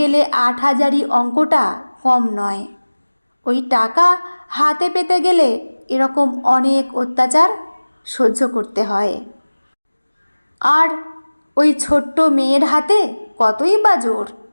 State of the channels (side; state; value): both; inverted; correlation -1.00